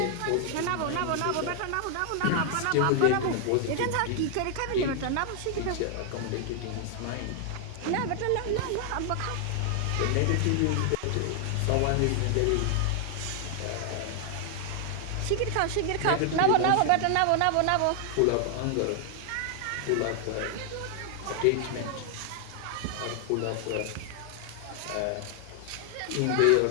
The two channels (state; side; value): different; both; correlation 0.00